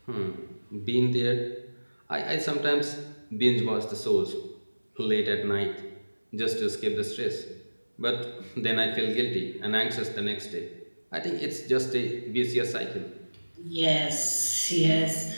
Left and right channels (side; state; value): both; inverted; correlation -1.00